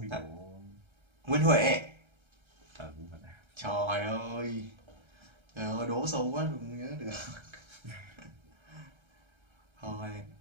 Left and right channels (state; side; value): late; left; 1.3 ms